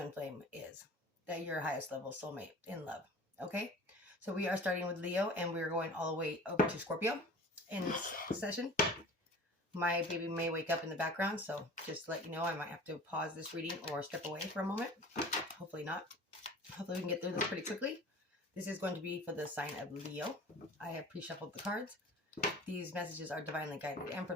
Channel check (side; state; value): both; normal; correlation 0.42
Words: flame is, that your highest level soulmate in love. Okay, so we are starting with Leo and we're going all the way over to Scorpio in this session. My baby may wake up in the background, so just to let you know, I might have to pause this reading or step away for a moment. Hopefully not. Hopefully we can get through this pretty quickly. This is going to be for the sign of Leo. I have pre-shuffled the cards. These messages are divinely guided and